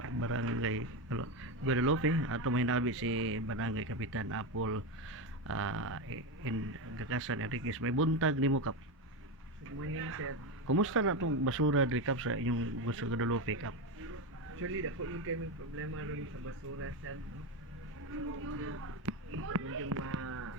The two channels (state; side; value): normal; both; correlation 0.14